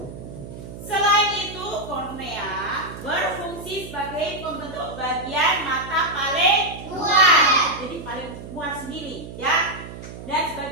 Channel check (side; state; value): right; noise; hum, 12 dB below the sound